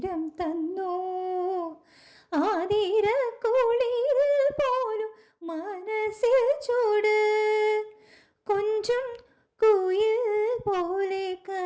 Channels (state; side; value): identical; both; correlation 1.00